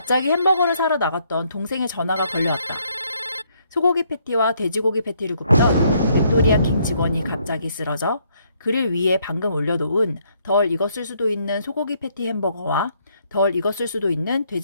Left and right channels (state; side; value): inverted; both; correlation -0.70